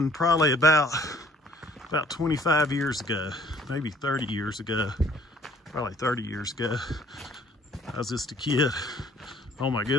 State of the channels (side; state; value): both; normal; correlation 0.59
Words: probably about 25 years ago, maybe 30 years ago, probably 30 years ago. I was just a kid. Oh my